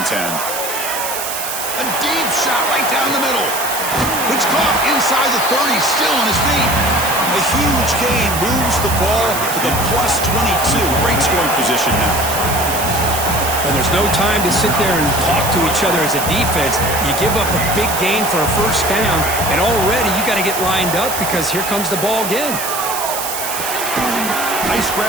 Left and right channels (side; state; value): right; noise; hiss, 5 dB below the sound